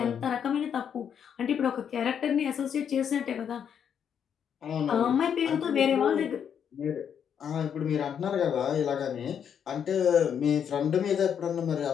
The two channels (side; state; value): right; quieter; 8.1 dB